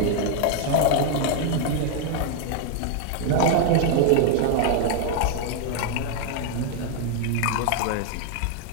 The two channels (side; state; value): both; different; correlation 0.00